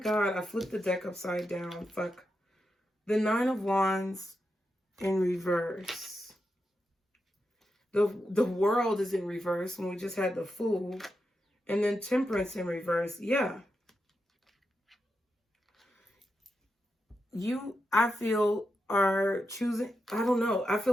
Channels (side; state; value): both; normal; correlation 0.87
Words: I flipped the deck upside down. Fuck. The Nine of Wands in reverse. The World is in reverse when we just had the Fool. And then Temperance in reverse. Yeah. You, I feel, are choosing, I don't know. I